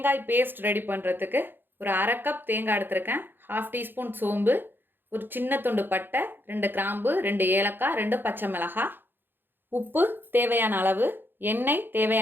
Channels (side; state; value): left; late; 0.098 ms